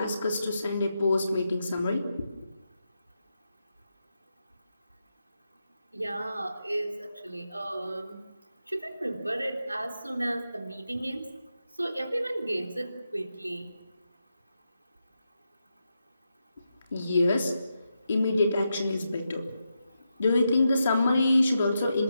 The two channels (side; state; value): both; inverted; correlation -0.86